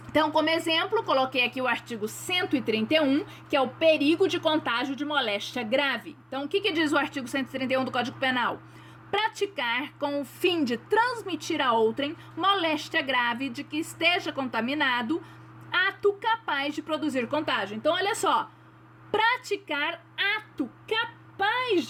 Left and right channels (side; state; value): both; identical; correlation 1.00